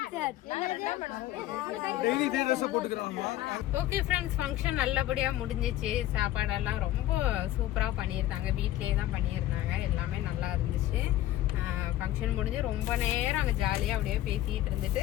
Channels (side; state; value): right; quieter; 14.2 dB